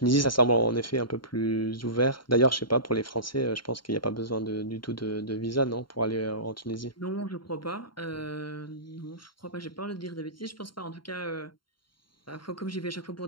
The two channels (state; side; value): late; right; 0.73 ms